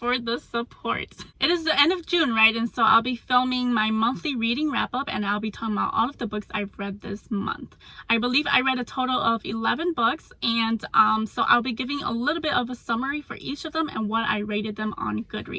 the support. It is the end of June, right? And so I'll be filming my monthly reading wrap up and I'll be talking about all of the books I've read this month. I believe I read a total of 11 books and so I'll be giving a little bit of a summary for each of them and what I rated them on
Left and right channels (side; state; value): both; identical; correlation 1.00